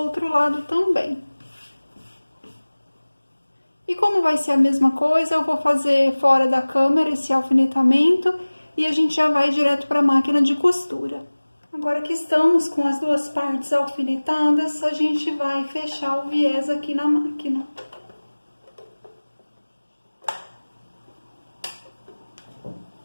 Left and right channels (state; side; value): inverted; both; correlation -1.00